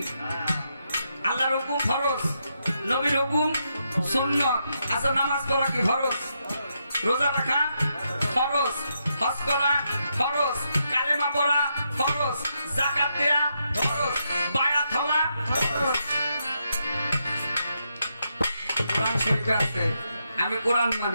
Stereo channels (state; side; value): inverted; both; correlation -0.81